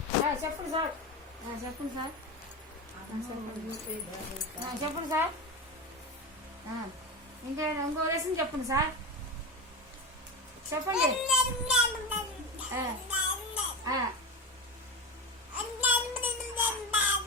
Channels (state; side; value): normal; both; correlation 0.20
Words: చెప్పండి సార్, చెప్పండి సార్, చెప్పండి సార్. ఇంకో లెసన్ చెప్పండి సార్, చెప్పండి.